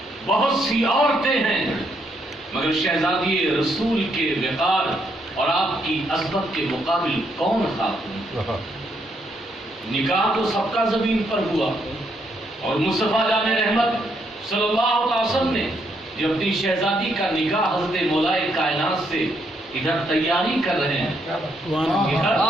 بہت سی عورتیں ہیں، مگر شہزادی رسول کے وقار اور آپ کی عظمت کے مقابل کون خاتون؟ نکاح تو سب کا زمین پر ہوا، اور مصطفیٰ جان رحمت صلی اللہ علیہ وسلم نے جو اپنی شہزادی کا نکاح حضرت مولائے کائنات سے ادھر تیاری کر رہے ہیں، ادھر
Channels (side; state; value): both; normal; correlation 0.75